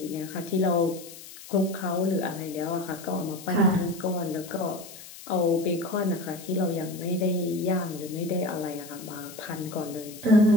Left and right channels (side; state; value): left; noise; hiss, 16 dB below the sound